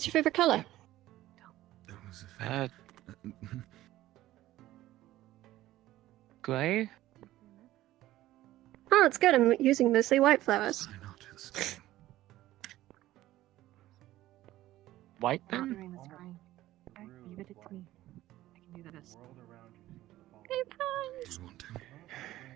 your favorite color? That was a Gray? Oh, it's good. I'm using mostly white flowers. White then? Leave it to me. I can do this.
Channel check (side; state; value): left; quieter; 15.3 dB